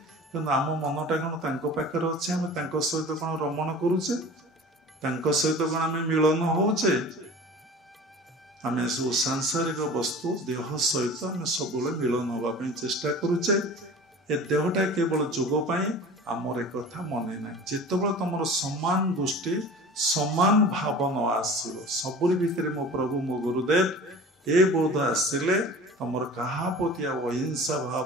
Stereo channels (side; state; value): both; normal; correlation 0.39